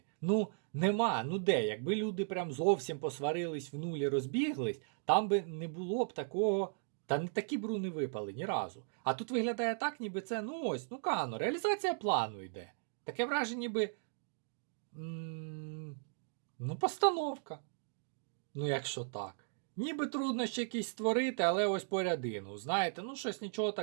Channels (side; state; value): left; silent; digital silence